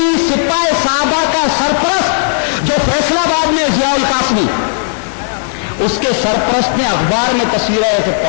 سپاہ صحابہ کا سرپرست جو فیصل آباد میں ضیاء القاسمی, اس کے سرپرست نے اخبار میں تصویریں ایسے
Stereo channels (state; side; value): silent; right; digital silence